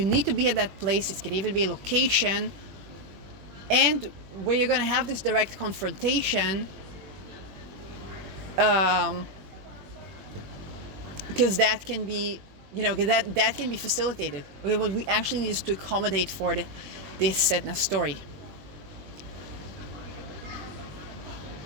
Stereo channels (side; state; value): left; late; 21 ms